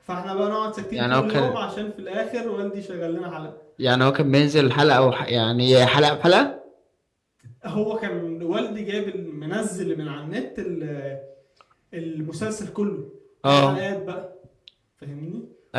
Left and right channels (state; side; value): identical; both; correlation 1.00